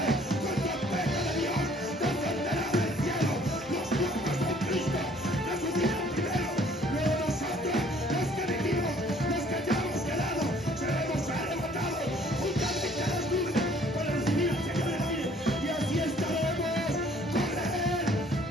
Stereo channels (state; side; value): normal; both; correlation 0.58